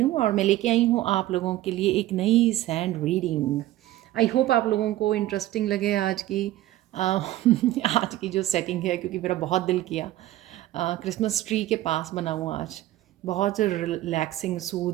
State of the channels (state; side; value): quieter; left; 15.1 dB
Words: और मैं लेके आई हूँ आप लोगों के लिए एक नई सैंड रीडिंग। आई होप आप लोगों को इंटरेस्टिंग लगे आज की आज की जो सेटिंग है, क्योंकि मेरा बहुत दिल किया। क्रिसमस ट्री के पास बना हुआ आज, बहुत रिलैक्सिंग,